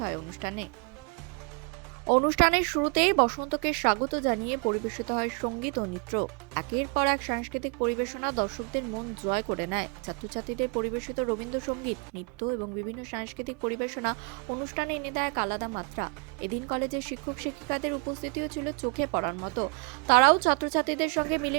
হয় অনুষ্ঠানে। অনুষ্ঠানের শুরুতেই বসন্তকে স্বাগত জানিয়ে পরিবেশিত হয় সঙ্গীত ও নৃত্য। একের পর এক সাংস্কৃতিক পরিবেশনা দর্শকদের মন জয় করে নেয়। ছাত্রছাত্রীদের পরিবেশিত রবীন্দ্রসঙ্গীত, নৃত্য এবং বিভিন্ন সাংস্কৃতিক পরিবেশনা অনুষ্ঠানে এনে দেয় এক আলাদা মাত্রা। এদিন কলেজের শিক্ষক শিক্ষিকাদের উপস্থিতিও ছিল চোখে পড়ার মতো। তারাও ছাত্রছাত্রীদের সঙ্গে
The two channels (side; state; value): left; quieter; 34.4 dB